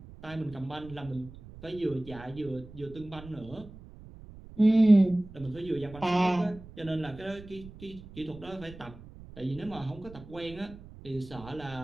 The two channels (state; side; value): noise; right; rumble, 17 dB below the sound